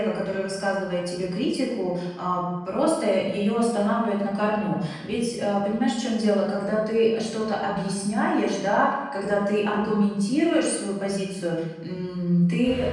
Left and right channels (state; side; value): identical; both; correlation 1.00